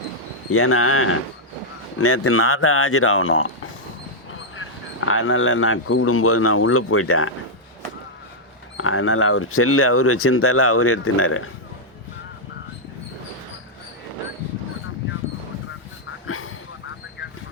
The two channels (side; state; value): both; normal; correlation -0.05